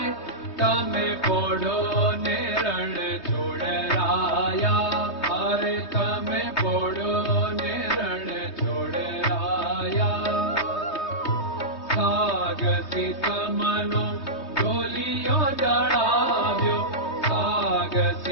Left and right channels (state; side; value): late; right; 3.2 ms